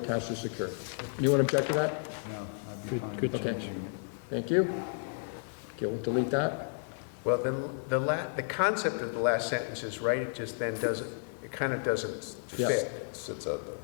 or secured. Anyone object to that? No, I'd be fine Good with Okay. changing it. Thank you. Okay, we'll delete that. Well, then, the concept of the last sentence is right, it just then doesn't, it kind of doesn't Yeah. fit. It sits out there,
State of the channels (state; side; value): silent; right; 56 dB below the other